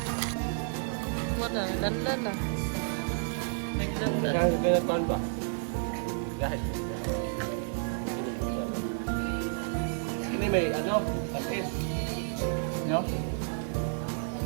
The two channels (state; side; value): silent; left; digital silence